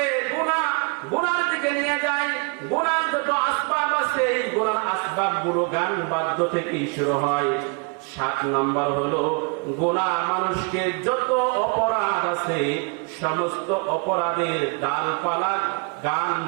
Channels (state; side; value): quieter; left; 35.0 dB